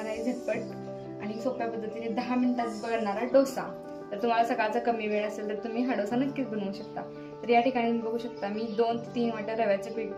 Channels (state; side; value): identical; both; correlation 1.00